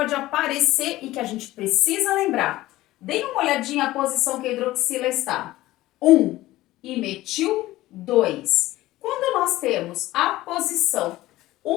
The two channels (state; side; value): quieter; right; 16.8 dB